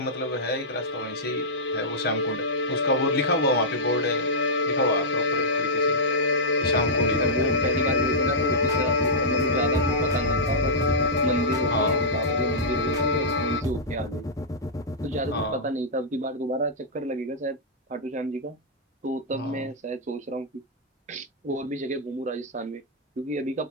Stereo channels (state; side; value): normal; both; correlation -0.11